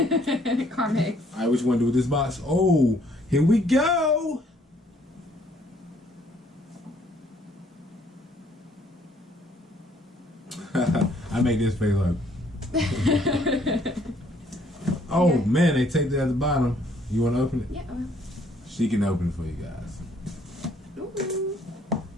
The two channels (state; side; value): normal; both; correlation 0.64